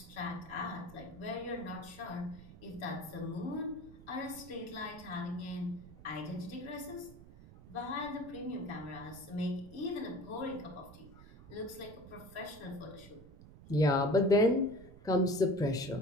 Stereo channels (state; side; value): noise; right; rumble, 18 dB below the sound